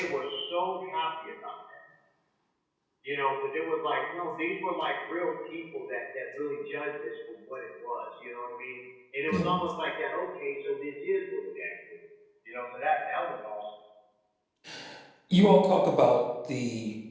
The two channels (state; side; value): identical; both; correlation 1.00